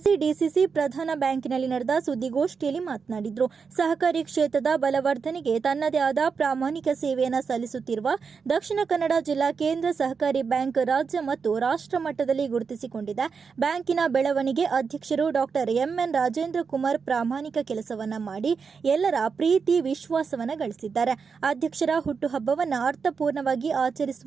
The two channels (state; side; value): quieter; left; 5.6 dB